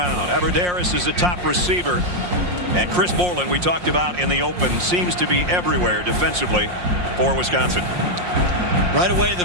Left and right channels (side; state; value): left; late; 5.6 ms